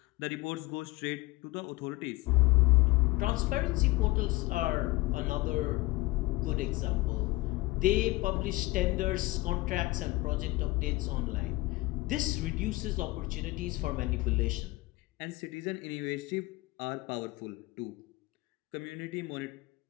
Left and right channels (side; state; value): right; quieter; 20.6 dB